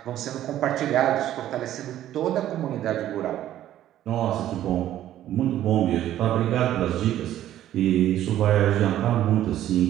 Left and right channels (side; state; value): left; quieter; 12.5 dB